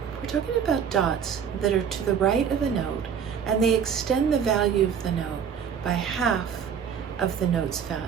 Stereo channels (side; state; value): left; quieter; 7.6 dB